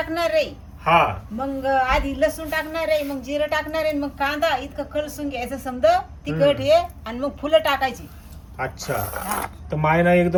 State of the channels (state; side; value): identical; both; correlation 1.00